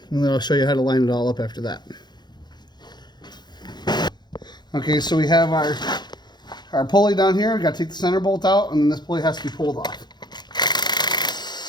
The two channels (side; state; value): right; late; 0.21 ms